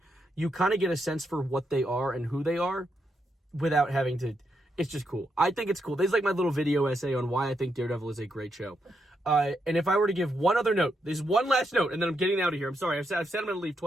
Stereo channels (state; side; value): normal; both; correlation 0.81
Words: you kind of get a sense for what they are and who they are without having to. It's just cool. I think it's cool. There's like my little video essay on why I think Daredevil is a great show. And if I were to give one other note, there's one last note, and then I'm getting out of here. I'm sorry. I've said I'm going to leave